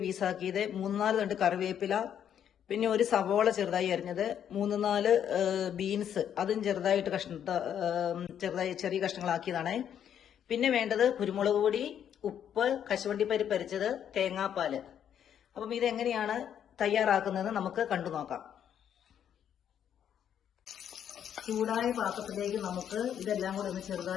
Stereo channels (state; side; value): quieter; right; 9.3 dB